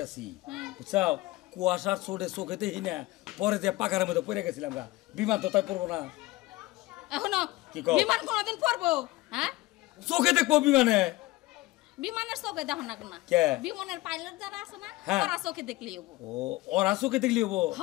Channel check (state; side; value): quieter; right; 19.2 dB